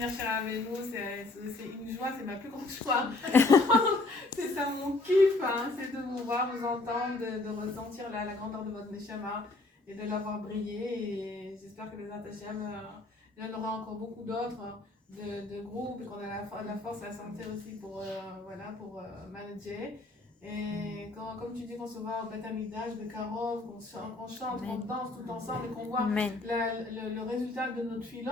chez Rabbeinu, c'est une joie, c'est ma plus grande joie. C'est ça mon kiff, hein, c'est de vous voir, vous entendre, de ressentir la grandeur de votre Neshama et de l'avoir brillé. Et j'espère que les Atachem, il y en aura encore beaucoup d'autres de groupes, qu'on a la force et la santé aussi pour manager. Et comme tu dis, qu'on se voit au Beth Amikdash, de Karov, qu'on chante, qu'on danse tout ensemble et qu'on voit le résultat de notre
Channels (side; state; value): right; quieter; 3.1 dB